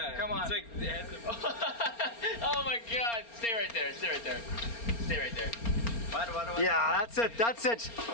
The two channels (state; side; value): late; right; 4.3 ms